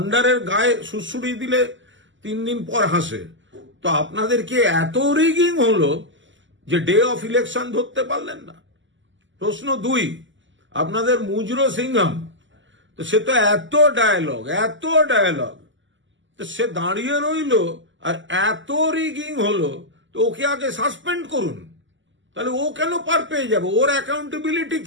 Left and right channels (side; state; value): left; late; 0.55 ms